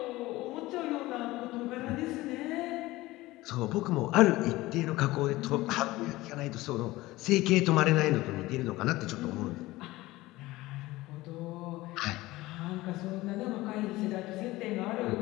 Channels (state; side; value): quieter; right; 18.8 dB